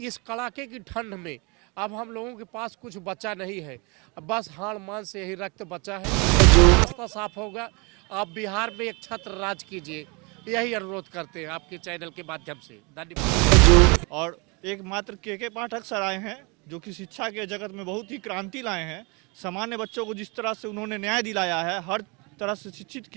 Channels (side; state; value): left; quieter; 29.6 dB